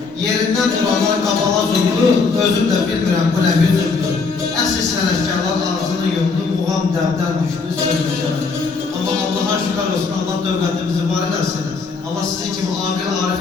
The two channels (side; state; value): right; quieter; 4.5 dB